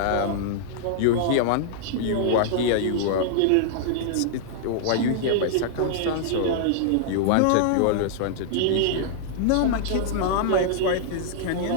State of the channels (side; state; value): both; different; correlation -0.01